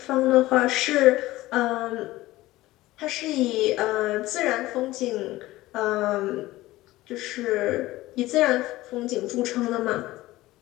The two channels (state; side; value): quieter; right; 17.6 dB